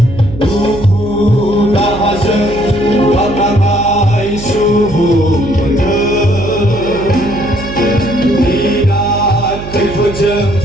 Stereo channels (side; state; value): right; noise; hum, 11 dB below the sound